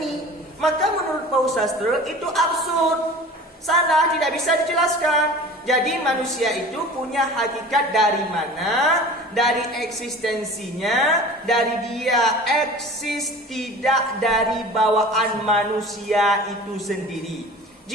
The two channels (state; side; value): normal; both; correlation 0.40